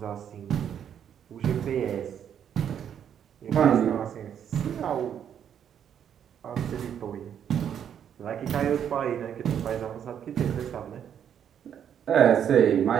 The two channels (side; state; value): left; quieter; 8.9 dB